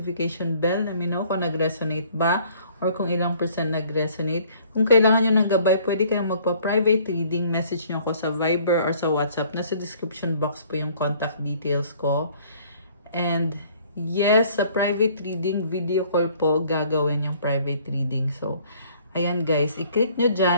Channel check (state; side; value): inverted; both; correlation -0.58